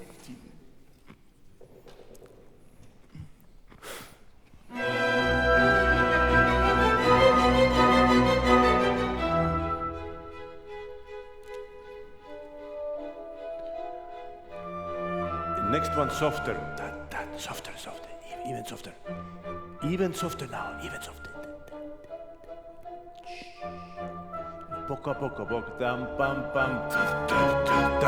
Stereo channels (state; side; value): identical; both; correlation 1.00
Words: Next one softer. Softer, even softer now, even softer. Poco a poco, dam pam pam,